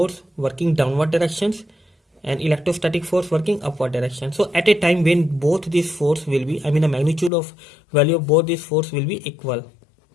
working downward directions and electrostatic force working upward direction. So at a time when both these force will be, I mean the magnitude of value of both these force will be equal.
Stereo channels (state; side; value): drops out; right; at 7.3 s